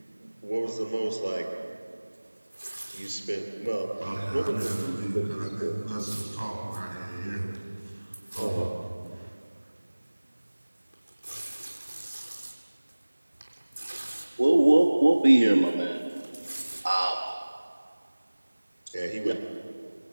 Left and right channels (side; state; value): both; inverted; correlation -1.00